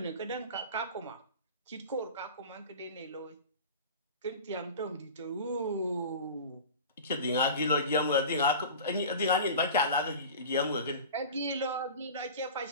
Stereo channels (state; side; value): inverted; both; correlation -0.35